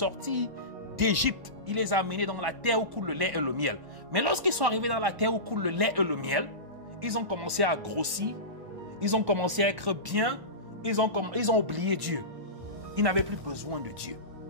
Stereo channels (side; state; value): left; late; 1.1 ms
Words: d'Égypte. Il les a amenés dans la terre où coule le lait et le miel. Mais lorsqu'ils sont arrivés dans la terre où coule le lait et le miel, ils ont commencé à grossir. Ils ont commencé à être bien. Ils ont oublié Dieu. Ils n'avaient plus besoin de Dieu.